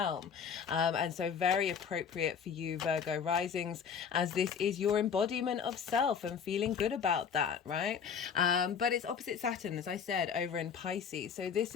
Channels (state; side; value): quieter; right; 6.9 dB